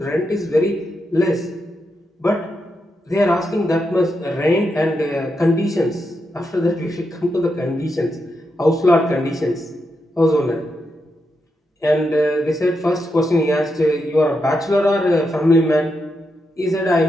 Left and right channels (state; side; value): normal; both; correlation 0.84